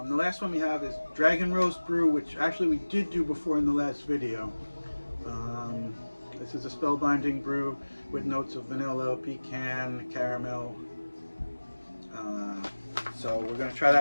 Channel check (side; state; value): both; inverted; correlation -1.00